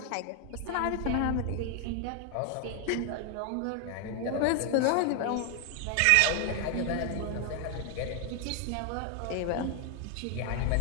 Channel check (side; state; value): both; different; correlation 0.00